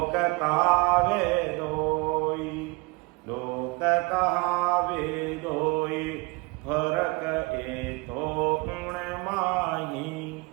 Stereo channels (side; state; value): left; quieter; 25.8 dB